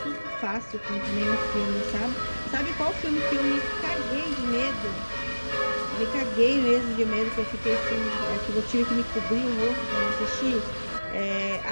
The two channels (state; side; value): inverted; both; correlation -1.00